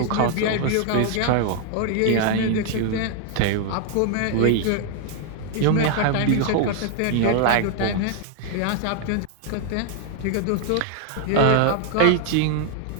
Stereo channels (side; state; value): both; different; correlation 0.00